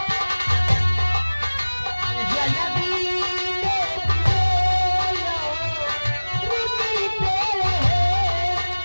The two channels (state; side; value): inverted; both; correlation -1.00